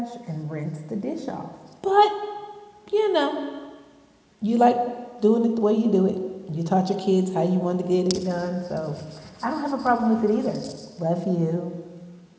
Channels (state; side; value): identical; both; correlation 1.00